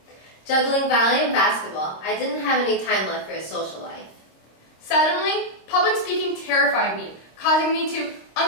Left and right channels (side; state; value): right; late; 26 ms